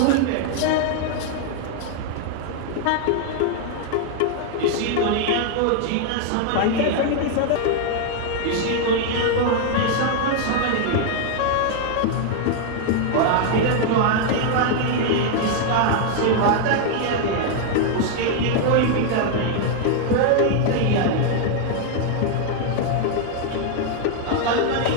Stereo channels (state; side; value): different; both; correlation 0.00